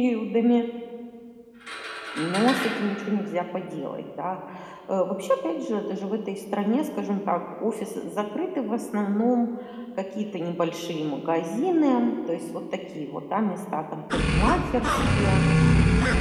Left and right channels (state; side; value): identical; both; correlation 1.00